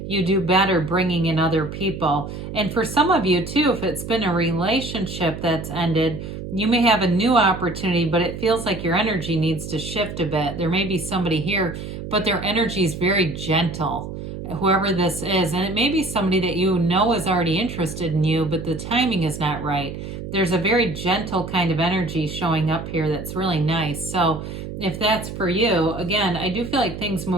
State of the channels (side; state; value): right; noise; hum, 8 dB below the sound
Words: do better bringing in other people. And for some of you too, if it's been a relationship that's ended, you may have a new opportunity, but it feels like your energy needs to shift a bit. There may be somebody here, but their energy is very gentle, whoever this is. And it may be somebody that you know is already interested in you, but the timing is not right. There's a very gentle kind of energy showing up here that's really nice. So if that's for you, again, I do feel like things